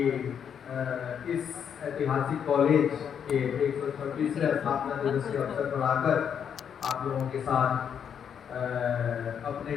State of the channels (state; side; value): quieter; right; 8.0 dB